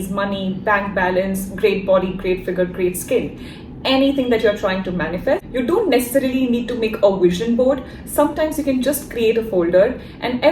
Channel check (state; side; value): identical; both; correlation 1.00